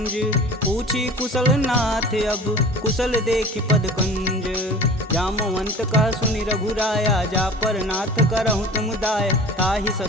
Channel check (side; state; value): both; normal; correlation 0.40